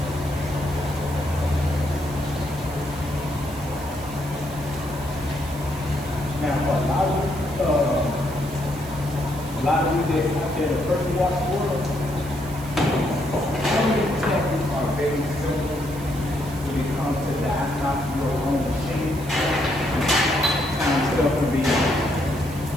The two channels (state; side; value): noise; right; hiss, 17 dB below the sound